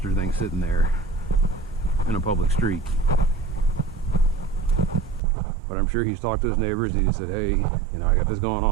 thing sitting there in a public street. But I'm sure he's talked to his neighbors. He said, hey, you know, I got this going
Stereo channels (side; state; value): left; drops out; at 5.2 s